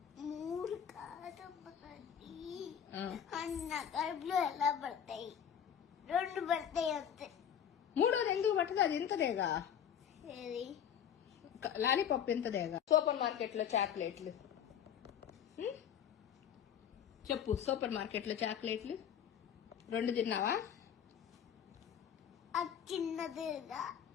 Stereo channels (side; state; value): right; quieter; 8.8 dB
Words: 3 కాదు అన్న కడుపులో ఎలా పడతాయి? 2 పడతాయి అంతే. 3వది ఎందుకు పట్టదు? అది ఇంతదేగా. లాలీపాప్ ఇంతదేగా. సూపర్ మార్కెట్ లో చాక్లెట్లు చెప్పు. సూపర్ మార్కెట్ లో చాక్లెట్లు 2 తిన్నావా? చిన్నదిగా